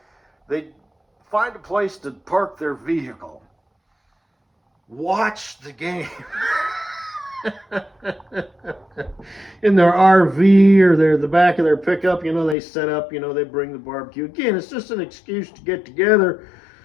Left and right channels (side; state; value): right; drops out; at 12.6 s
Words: they find a place to park their vehicle, watch the game. In their RV or the back of their pickup, you know, they set up, you know, they bring the barbecue. Again, it's just an excuse to get together,